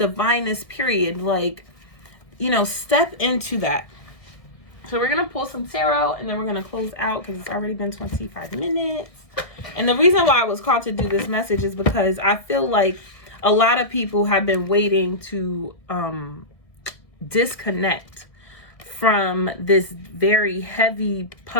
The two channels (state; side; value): late; right; 1.7 ms